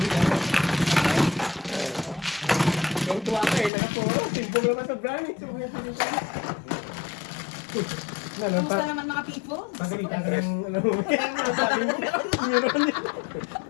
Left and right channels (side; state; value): right; drops out; at 3.7 s